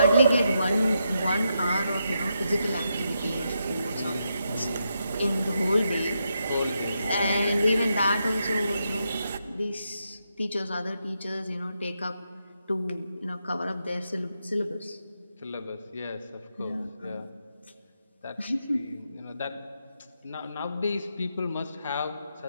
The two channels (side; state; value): both; inverted; correlation -0.83